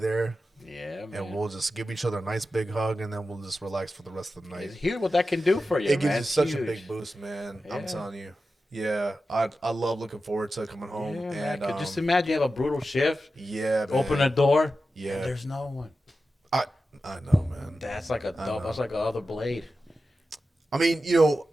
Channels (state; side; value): normal; both; correlation 0.92